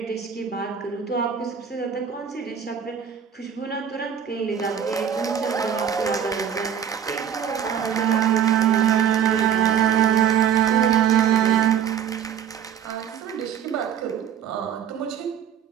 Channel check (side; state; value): left; quieter; 8.6 dB